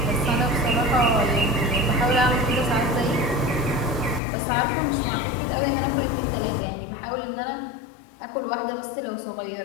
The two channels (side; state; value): right; drops out; at 4.2 s